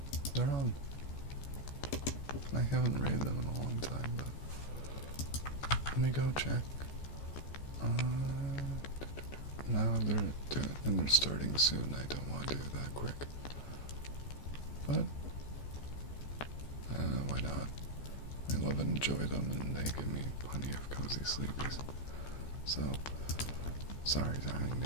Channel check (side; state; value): right; late; 14 ms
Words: They're on. I haven't rated them in a long time, but let me go check. Now they're starting soon. I don't want to do it that quick. But why not? I love and enjoy them, and they give me plenty of cozy sleepies. So, sorry, darling,